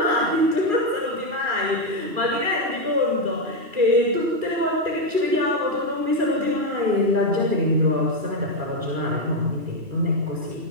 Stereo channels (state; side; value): late; left; 2.7 ms